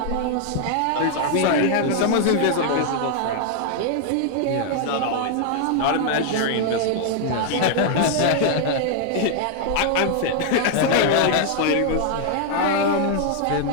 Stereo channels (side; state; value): both; different; correlation 0.00